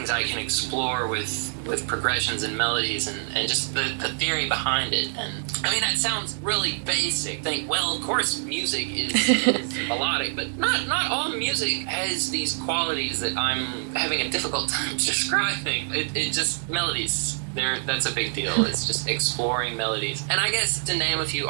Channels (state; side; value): silent; left; digital silence